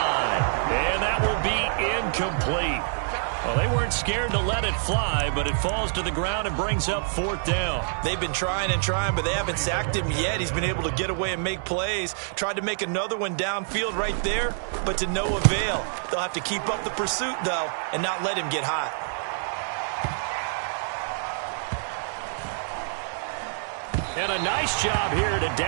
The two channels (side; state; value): left; silent; digital silence